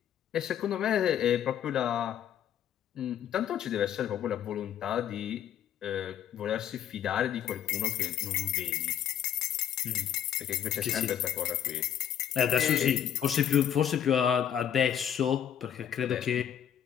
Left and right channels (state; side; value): quieter; right; 9.8 dB